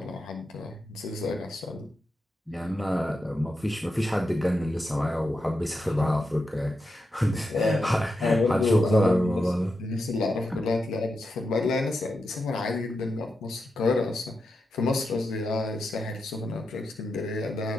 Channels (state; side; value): normal; both; correlation 0.87